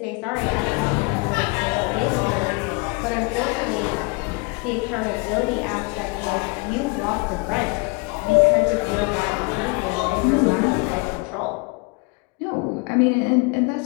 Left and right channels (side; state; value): right; quieter; 29.0 dB